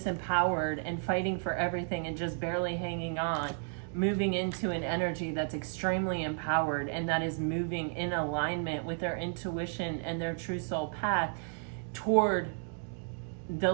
and fighting for everything and just barely hanging on, moving into an energy that's extremely empowered and that is moving in alignment with their intuition and their true soul path toward the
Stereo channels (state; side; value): silent; left; 56 dB below the other